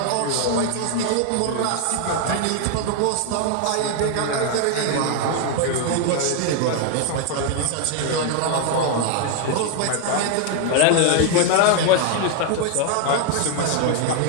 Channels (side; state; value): both; different; correlation 0.00